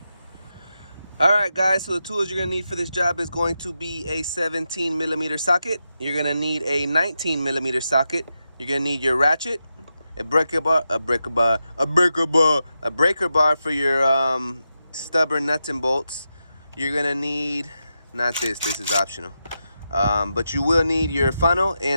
Alright guys, so the tools you're going to need for this job is going to be a 17mm socket. You're going to need a 19mm socket. You're going to need your ratchet, a breaker bar for your stubborn nuts and bolts. You're going to need, not this is optional. But you will need your funnel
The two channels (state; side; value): inverted; both; correlation -0.88